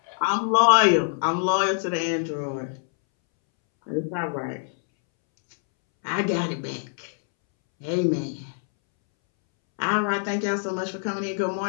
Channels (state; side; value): silent; right; 62 dB below the other